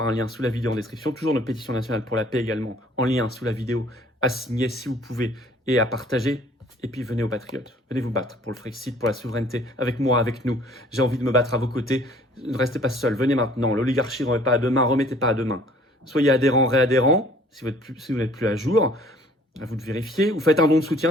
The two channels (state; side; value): normal; both; correlation 0.55